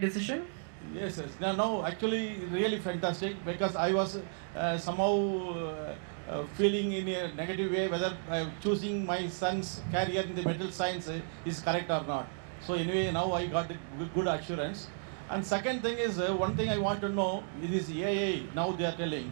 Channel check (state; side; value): silent; left; digital silence